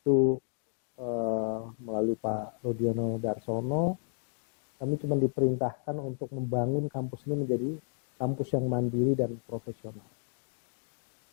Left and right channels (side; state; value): right; silent; 57 dB below the other